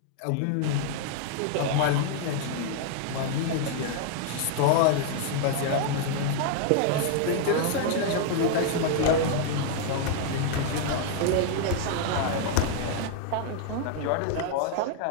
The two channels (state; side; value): different; both; correlation 0.00